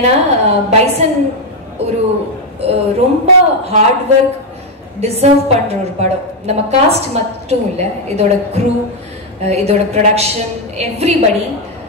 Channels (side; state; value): both; normal; correlation 0.04